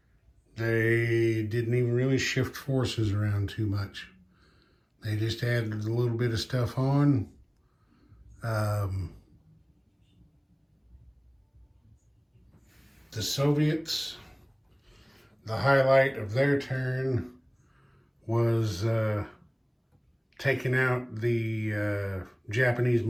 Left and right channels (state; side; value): identical; both; correlation 1.00